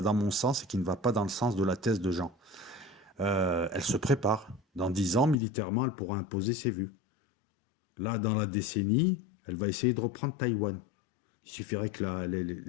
dans mon sens et qui ne va pas dans le sens de la thèse de Jean. Elle se prépare. Dans 10 ans, militairement, elle pourra imposer ses vues. Là, dans la décennie, elle va essayer de reprendre Taïwan. Il suffirait que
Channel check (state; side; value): drops out; right; at 5.4 s